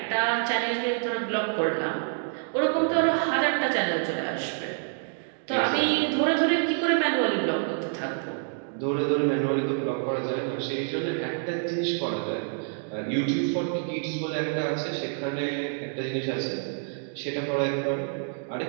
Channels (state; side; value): silent; left; 60 dB below the other